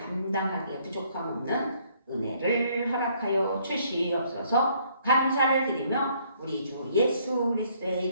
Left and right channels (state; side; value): inverted; both; correlation -0.65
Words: 부족함 없는 은혜를 허락하여 주시옵소서. 감사를 드리며 우리 주 예수 그리스도의